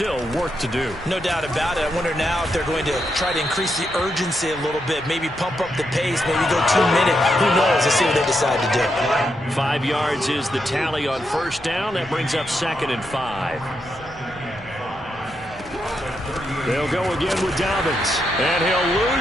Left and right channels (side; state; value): both; normal; correlation 0.82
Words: work to do. No doubt about it. I wonder now if they're going to try to increase the urgency a little bit, maybe pump up the pace, maybe go 2 minutes. Who knows? Let's see what they decide to do. 5 yards is the tally on first down. That brings up 2nd and 5. They'll go again with Dobbins. And he'll